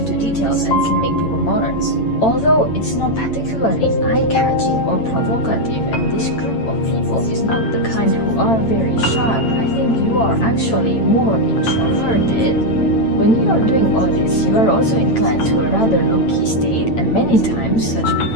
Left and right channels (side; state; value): right; late; 8.9 ms